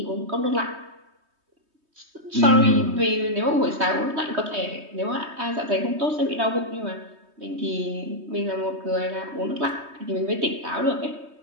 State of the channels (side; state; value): left; late; 3.2 ms